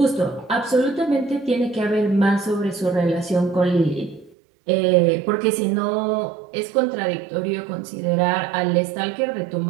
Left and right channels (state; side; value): drops out; left; at 4.4 s